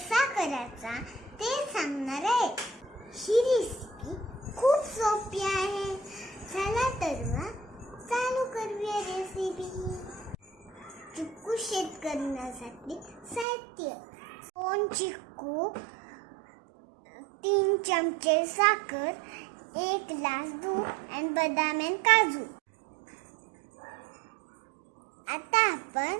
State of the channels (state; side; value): drops out; left; at 13.5 s